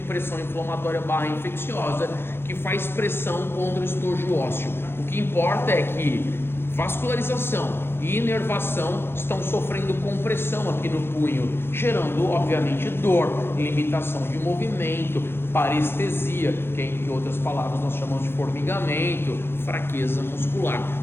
inflamatória / infecciosa que faz pressão contra o estojo ósseo. O que importa é que vascularização e inervação estão sofrendo compressão aqui no punho, gerando obviamente dor, limitação de movimento, parestesia, que em outras palavras nós chamamos de formigamento, fraqueza muscular.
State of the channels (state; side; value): late; right; 0.11 ms